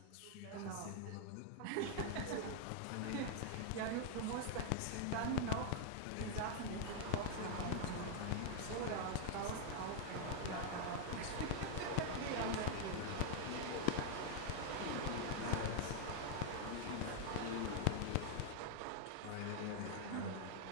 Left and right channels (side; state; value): both; different; correlation 0.00